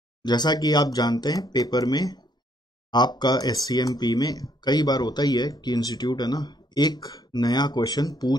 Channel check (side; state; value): both; normal; correlation 0.69